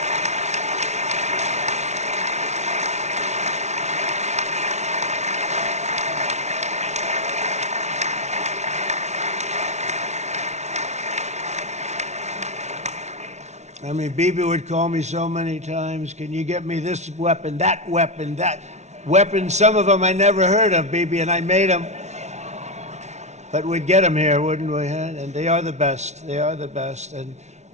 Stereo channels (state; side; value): late; left; 0.32 ms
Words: I mean, Bibi would call me so many times, can you get me this weapon, that weapon, that weapon? Some of them I never heard of, Bibi, and I made them. But we'd get them here, wouldn't we? And they are the best. They are the best.